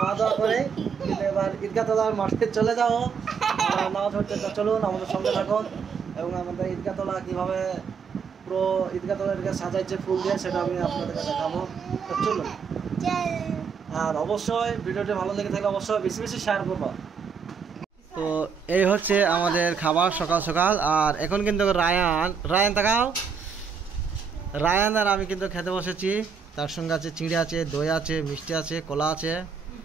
দাওয়া করে, কিন্তু এবার ঈদগাহ তলার মাঠে চলে যাবো নামাজ পড়তে। তো চলুন, আমাদের সঙ্গে থাকুন এবং আমাদের ঈদগাহ তলা কীভাবে পুরো ঈদগাহ তলাকে সাজাইছে ফুল দিয়ে, সেটা আমি আপনাদেরকে দেখাবো। তো চলুন, আর অবশ্যই ভিডিওটি ভালো লেগে থাকলে অবশ্যই বেশি বেশি শেয়ার করবো। তো এই হচ্ছে আমাদের খাবার সকাল সকাল। আর এখন কিন্তু রায়ান তাকাও, রায়ান আর আমি কিন্তু খেতে বসেছি। তার সঙ্গে আছে চিড়ে আছে, দই আছে, মিষ্টি আছে, কলা আছে,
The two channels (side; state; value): left; quieter; 6.1 dB